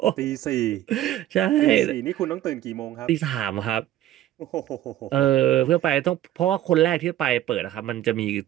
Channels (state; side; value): quieter; left; 13.1 dB